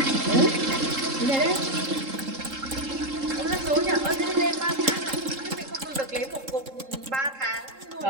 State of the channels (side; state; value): left; late; 3.7 ms